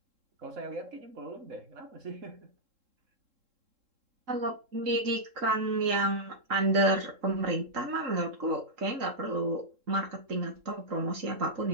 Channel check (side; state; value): left; late; 3.7 ms